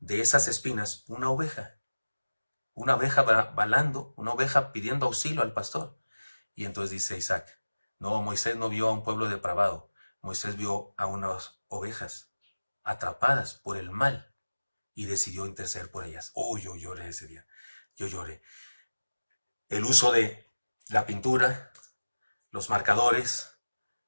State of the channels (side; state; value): both; inverted; correlation -1.00